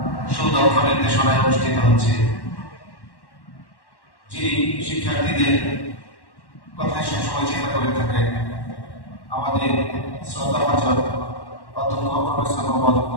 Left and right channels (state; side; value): late; right; 1.1 ms